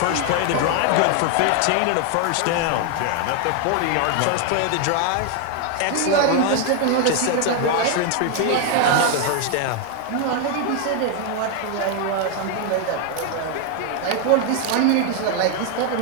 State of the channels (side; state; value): both; different; correlation 0.00